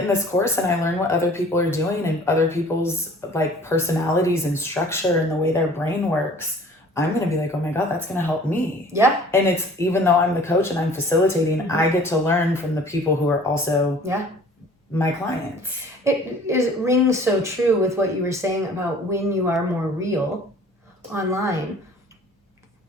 in this course and I learn what other people are doing and other people's like personalities and structure and the way their brain works, I'm going to be like, oh my God, that's going to help me. Yeah. And it's, even though I'm the coach and I'm facilitating, I get to learn from the people who are also my clients. It rings so true with what you were saying about when you are more real online.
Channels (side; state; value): both; normal; correlation 0.49